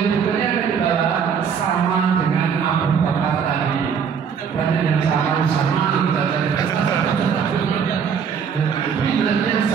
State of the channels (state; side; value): quieter; left; 7.0 dB